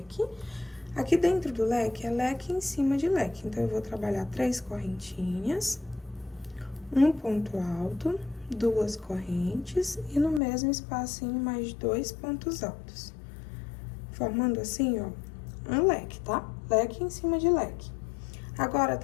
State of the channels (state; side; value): drops out; right; at 10.4 s